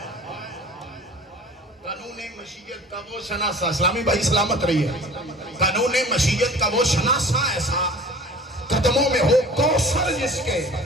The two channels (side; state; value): both; normal; correlation 0.43